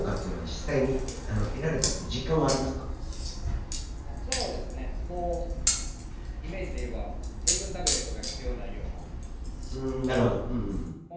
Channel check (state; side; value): identical; both; correlation 1.00